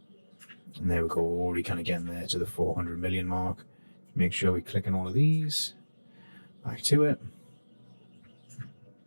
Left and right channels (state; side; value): inverted; both; correlation -1.00